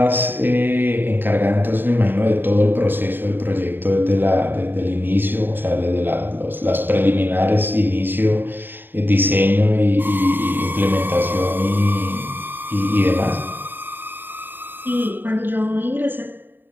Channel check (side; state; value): left; late; 0.094 ms